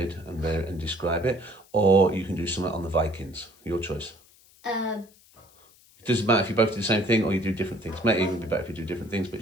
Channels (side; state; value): left; noise; hiss, 28 dB below the sound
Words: and describe it. Or you can do something on the Vikings. Your choice. It doesn't matter if you both do the same thing or you do different things. It might even be better if you do different things, but